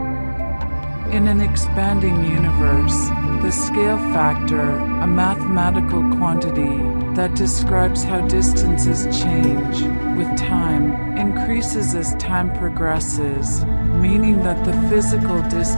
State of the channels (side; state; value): both; inverted; correlation -1.00